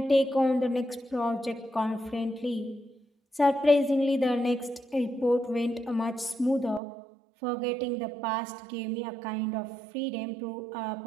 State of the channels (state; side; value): drops out; left; at 6.8 s